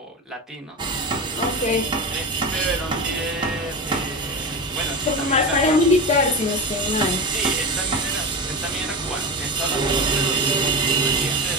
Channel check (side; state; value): both; normal; correlation 0.22